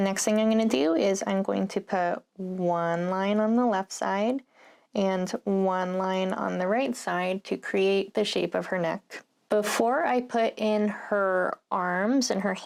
thing I'm going to do is I'm going to put one line on the left side and one line on the right side to create the shape of her neck. Before I put in her arms and her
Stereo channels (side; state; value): both; identical; correlation 1.00